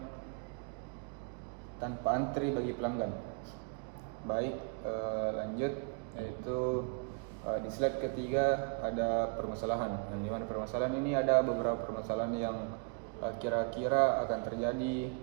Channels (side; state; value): left; quieter; 36.4 dB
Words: bagi pelanggan. Baik, lanjut, yaitu di slide ketiga ada permasalahan. Yang dimana permasalahan ini ada beberapa permasalahan yang kira-kira akan terjadi